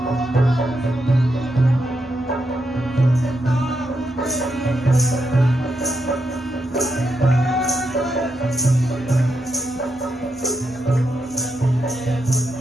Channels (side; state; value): both; normal; correlation 0.82